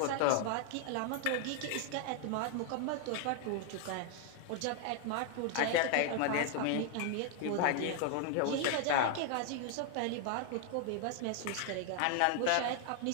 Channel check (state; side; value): different; both; correlation 0.00